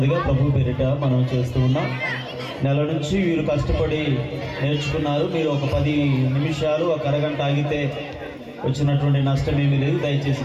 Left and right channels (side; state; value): both; identical; correlation 1.00